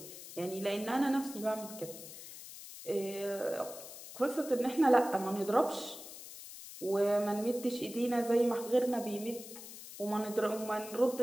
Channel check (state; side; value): noise; left; hiss, 13 dB below the sound